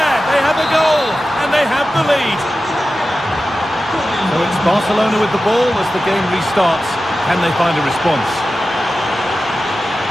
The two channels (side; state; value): both; normal; correlation 0.93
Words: They have a goal. And they have the lead. So it's Barcelona with the ball as the game restarts. Can they find a response?